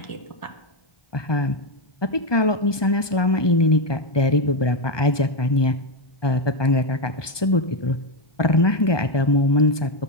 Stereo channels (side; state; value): right; late; 1.2 ms